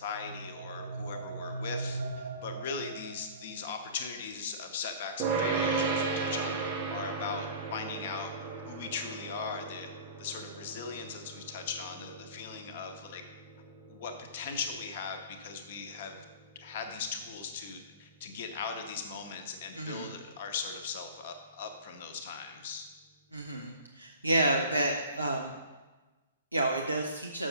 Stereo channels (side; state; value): both; inverted; correlation -0.43